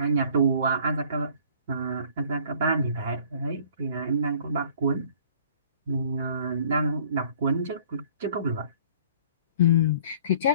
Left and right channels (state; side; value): inverted; both; correlation -0.52